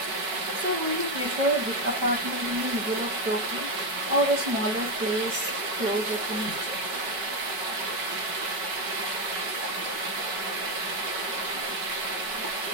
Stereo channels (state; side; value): late; left; 4.6 ms